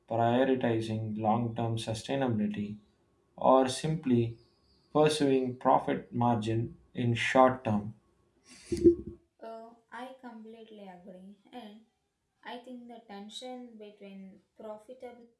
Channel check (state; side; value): identical; both; correlation 1.00